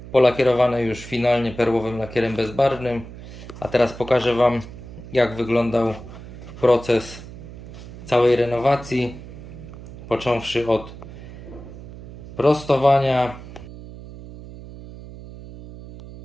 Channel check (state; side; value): noise; right; hum, 14 dB below the sound